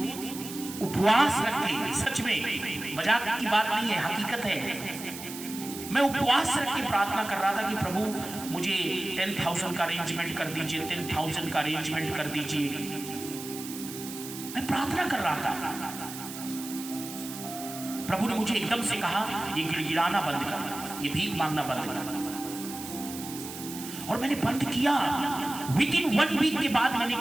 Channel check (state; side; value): noise; right; hiss, 11 dB below the sound